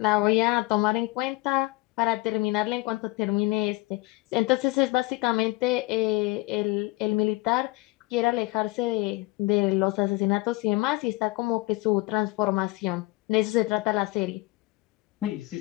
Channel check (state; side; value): quieter; right; 21.6 dB